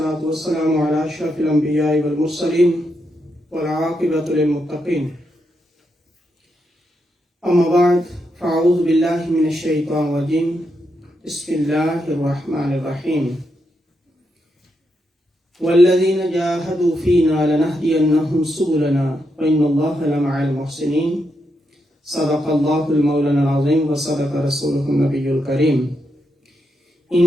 والسلام على أشرف الأنبياء والمرسلين والعاقبة للمتقين أما بعد فأعوذ بالله من الشيطان الرجيم بسم الله الرحمن الرحيم والذين جاهدوا فينا لنهدينهم سبلنا وإن الله لمع المحسنين صدق الله المولانا العظيم وصدق رسوله النبي الكريم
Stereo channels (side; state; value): both; normal; correlation 0.83